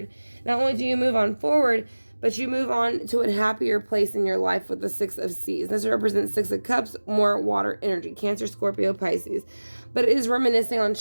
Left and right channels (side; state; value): both; inverted; correlation -1.00